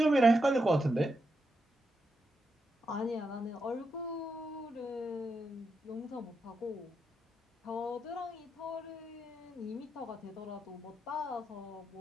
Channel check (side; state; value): both; normal; correlation 0.84